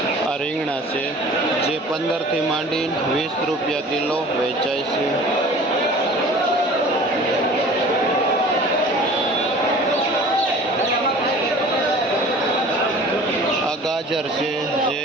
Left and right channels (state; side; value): normal; both; correlation 0.44